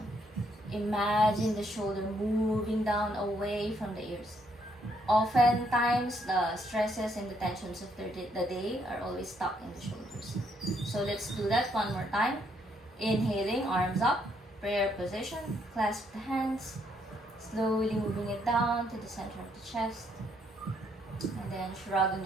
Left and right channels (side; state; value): both; normal; correlation 0.72